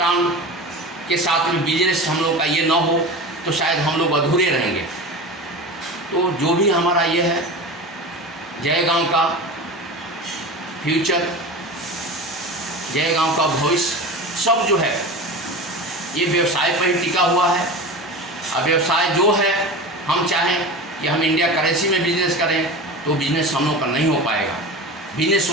के साथ में बिजनेस हम लोग का ये न हो तो शायद हम लोग अधूरे रहेंगे। तो जो भी हमारा ये है जयगांव का फ्यूचर, जयगांव का भविष्य, सब जो है ये व्यवसाय पर ही टिका हुआ है। अब व्यवसाय जो है हम चाहें कि हम इंडिया करेंसी में बिजनेस करें तो बिजनेस हम लोग का नहीं हो पाएगा। बिजनेस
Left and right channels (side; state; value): both; normal; correlation 0.30